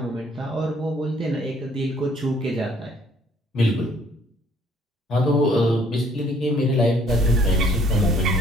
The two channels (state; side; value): normal; both; correlation 0.61